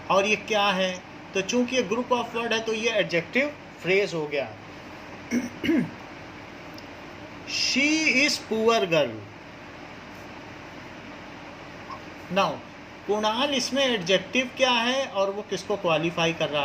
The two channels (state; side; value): identical; both; correlation 1.00